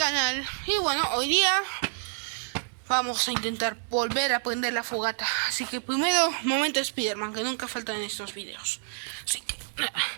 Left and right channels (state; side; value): silent; left; digital silence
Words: Y bueno, hoy día vamos a intentar volver a prender la fogata. Así que primero, momento Spiderman, que nunca falta en estos videos. Así que,